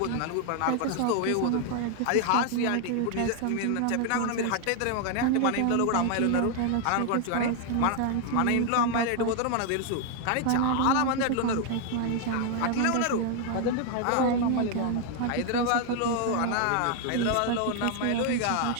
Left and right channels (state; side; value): different; both; correlation 0.00